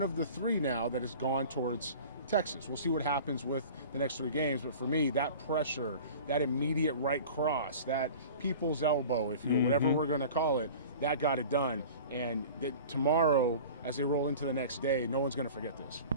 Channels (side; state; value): both; inverted; correlation -0.40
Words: of the 3 now that has gone towards Texas. We'll see what happens with the next 3 games, but for me, that pressure, that immediate right cross, that people's elbow, if you will, whatever we're going to call it, that got it done. And tomorrow, as they roll into the next day, no one's going to forget this.